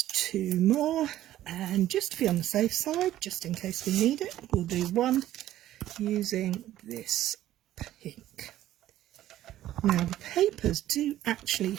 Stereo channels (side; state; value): left; quieter; 13.4 dB